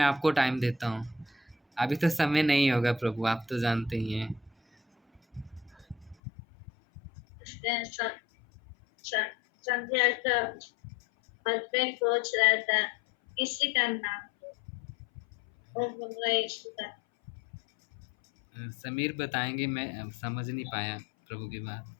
आपको टाइम देता हूँ। अभी तो समय नहीं होगा प्रभु, आप तो जानते ही हैं। इसलिए संध्या का हस्बैंड पूछ रहा था किसी का नाम लो, वो बोल रहा है यीशु का। समीर बताएंगे, मैं समझ नहीं पाया प्रभु की बात।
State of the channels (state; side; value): drops out; right; at 6.2 s